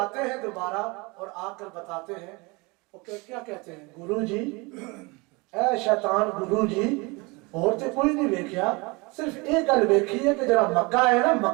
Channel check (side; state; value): left; quieter; 26.6 dB